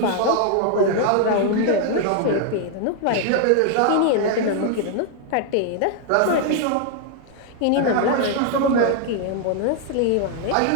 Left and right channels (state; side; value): different; both; correlation 0.00